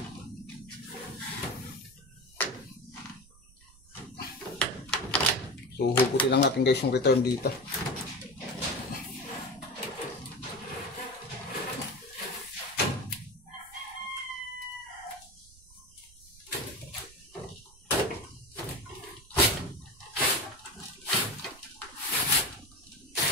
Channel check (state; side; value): noise; right; rumble, 24 dB below the sound